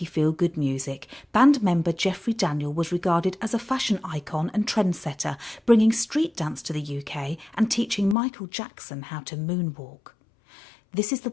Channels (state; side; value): drops out; right; at 8.2 s